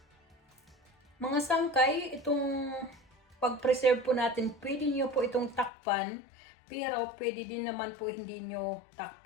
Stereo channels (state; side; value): drops out; right; at 5.7 s